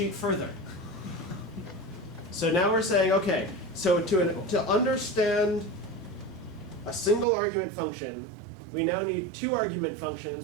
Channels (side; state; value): left; drops out; at 7.2 s